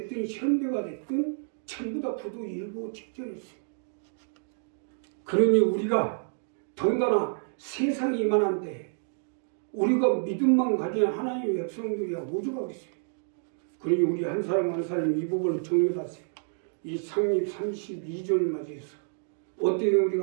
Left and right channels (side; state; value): left; silent; digital silence